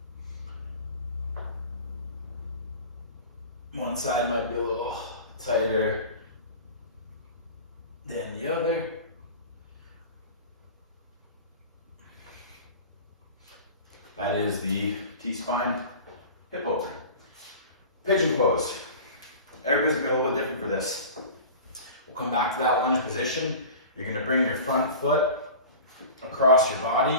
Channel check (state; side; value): inverted; both; correlation -0.37